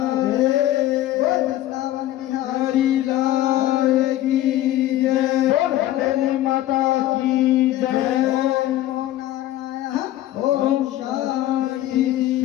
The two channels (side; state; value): right; quieter; 14.1 dB